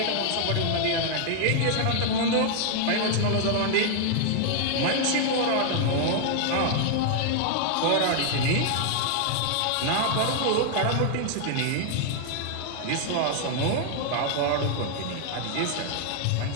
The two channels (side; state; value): both; different; correlation 0.00